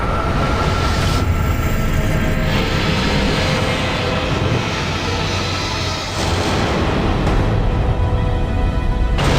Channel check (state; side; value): identical; both; correlation 1.00